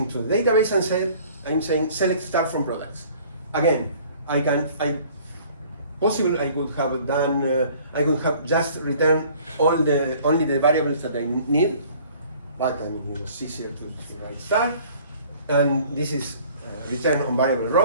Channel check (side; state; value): both; inverted; correlation -0.53